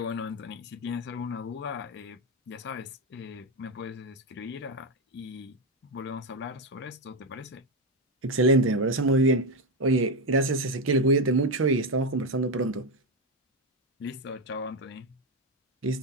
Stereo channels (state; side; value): normal; both; correlation 0.08